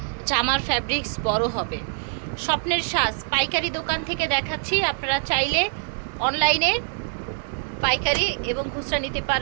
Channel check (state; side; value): silent; left; 62 dB below the other